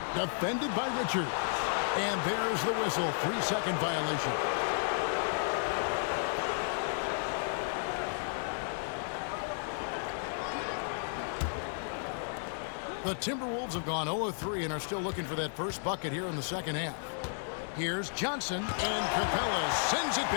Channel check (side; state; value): right; silent; digital silence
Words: defended by Richards. And there's the whistle, 3-second violation. The Timberwolves have gone 0 of 3 and are still looking for that first bucket here in the second half. Here's Johnson, and Capella sends it